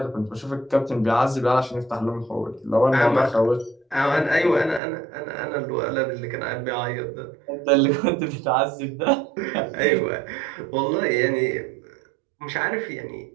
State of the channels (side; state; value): left; drops out; at 4.8 s